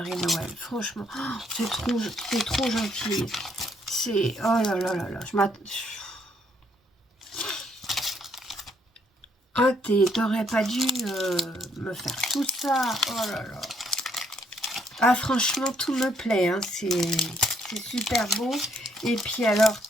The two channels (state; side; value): normal; both; correlation 0.70